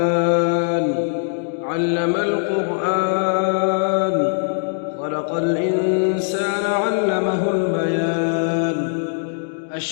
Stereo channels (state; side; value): silent; right; digital silence